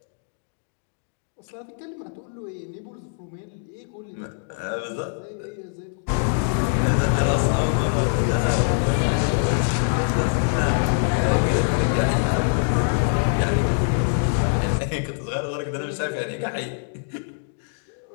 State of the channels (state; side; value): silent; right; digital silence